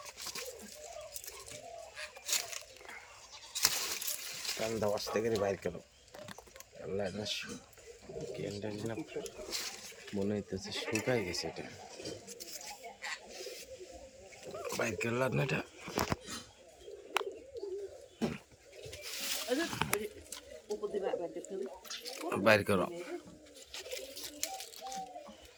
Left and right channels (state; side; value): identical; both; correlation 1.00